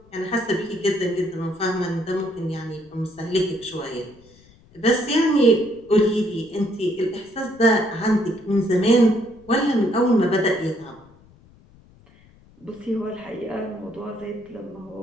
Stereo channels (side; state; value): left; noise; rumble, 27 dB below the sound